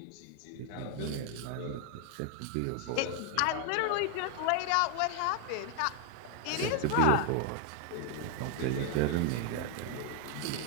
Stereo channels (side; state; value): both; different; correlation 0.00